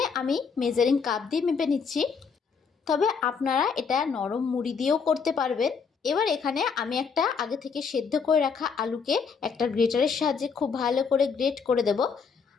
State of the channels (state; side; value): quieter; right; 5.7 dB